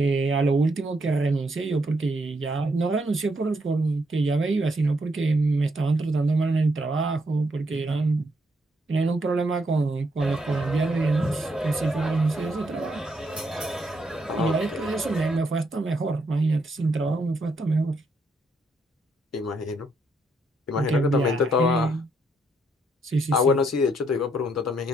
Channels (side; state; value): both; normal; correlation 0.76